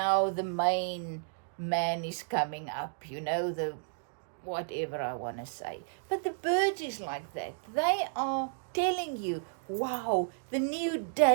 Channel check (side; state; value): left; silent; digital silence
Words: the main man is coming up, you know, the whatever I want to say. But the birds is like that. They are telling you, wow, the new